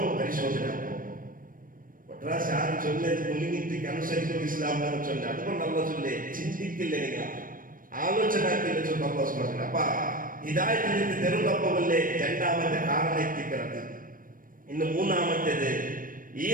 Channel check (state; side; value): late; left; 0.40 ms